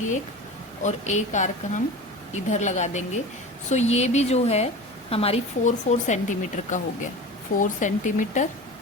एक और एक आर्क हम इधर लगा देंगे. सो ये भी जो है हमारी 4 सेंटीमीटर का हो गया, 4 centimetre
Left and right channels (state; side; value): normal; both; correlation 0.33